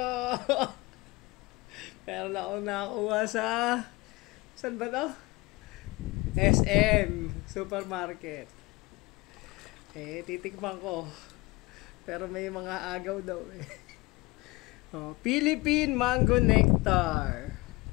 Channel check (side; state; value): right; quieter; 23.0 dB